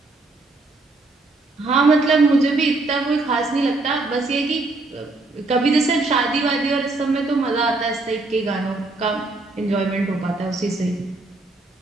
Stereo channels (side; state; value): left; quieter; 3.3 dB